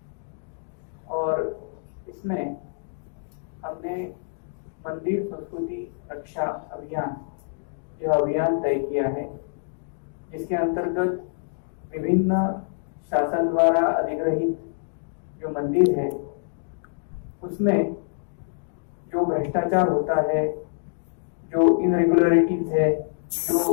और इसमें हमने मंदिर संस्कृति रक्षा अभियान यह अभियान तय किया है, जिसके अंतर्गत विभिन्न शासन द्वारा अधिग्रहित जो मंदिर है उसमें जो भ्रष्टाचार होता है, जो इनरेगुलरिटीज है,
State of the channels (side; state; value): right; silent; digital silence